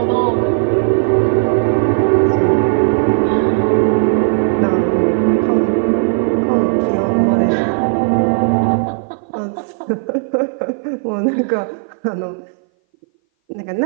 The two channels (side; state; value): left; silent; 59 dB below the other